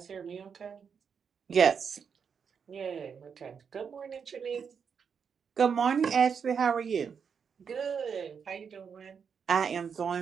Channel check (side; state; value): left; quieter; 6.6 dB